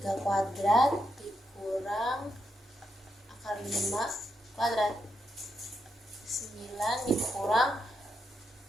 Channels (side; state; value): both; normal; correlation 0.82